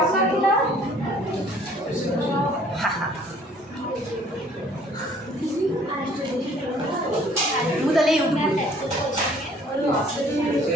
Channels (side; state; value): both; normal; correlation 0.57